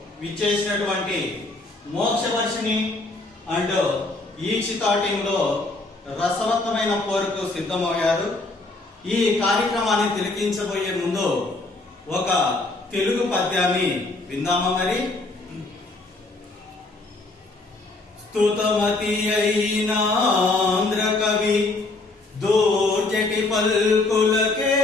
విచ్చేసినటువంటి మోక్షవర్షిని అండ్ ఈక్షిత టీంలో రసవత్తమైన పోరుకు సిద్ధమయ్యారు. ఈ కార్యక్రమాన్ని తిలకించబోయే ముందు ఒక తెలుగు పద్యాన్ని విందామా మరి. స్తుతమతి అయిన ఆంధ్ర కవి దోర్జటి పల్కులకేలగల్గెనో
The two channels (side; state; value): right; quieter; 3.1 dB